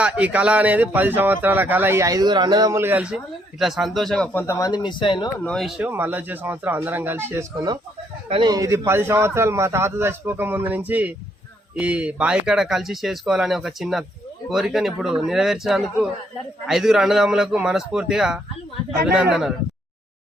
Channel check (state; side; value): normal; both; correlation 0.71